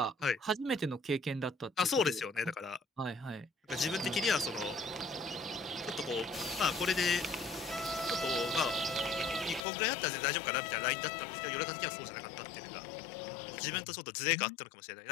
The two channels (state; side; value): drops out; right; at 9.7 s